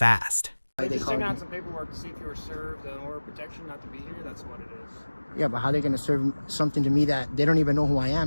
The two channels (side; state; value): both; inverted; correlation -1.00